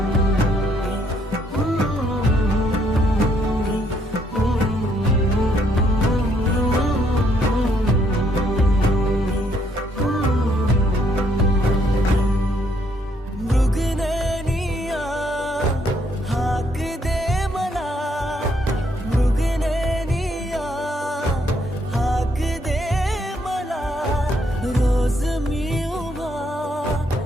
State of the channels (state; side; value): normal; both; correlation 0.71